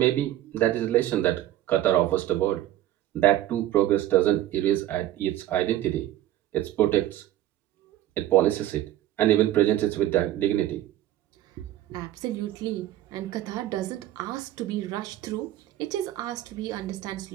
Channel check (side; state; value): left; quieter; 13.7 dB